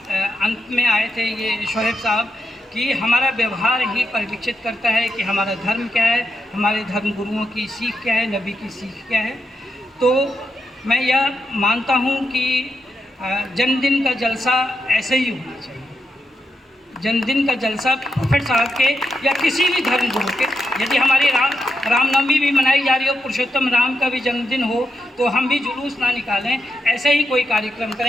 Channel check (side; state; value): both; normal; correlation 0.84